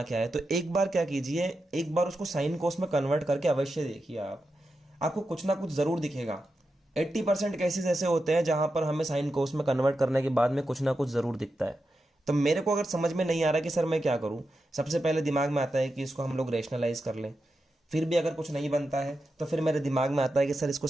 क्या है, तो एक बार क्या कीजिए, एक बार उसको साइन कोस में कन्वर्ट करके अवश्य देखिए आप, आपको कुछ ना कुछ जरूर दिखेगा। 80% केसेस ऐसे होते हैं जहां पर हमें साइन कोस में कन्वर्ट करने के बाद में कुछ ना कुछ जरूर दिखता है। तो मेरे को अगर समझ में नहीं आ रहा कि सर मैं क्या करूं, सबसे पहले दिमाग में आता है कि इसको हम लोग रेशनलाइज कर लें। फिर भी अगर कुछ नहीं बनता है तो फिर मेरे दिमाग में आता है कि सर इसको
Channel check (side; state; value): both; normal; correlation 0.89